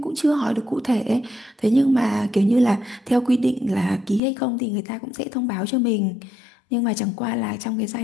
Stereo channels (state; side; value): drops out; right; at 4.2 s